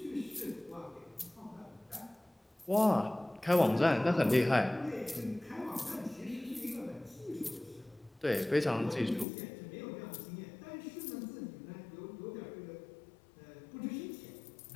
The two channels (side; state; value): right; drops out; at 9.2 s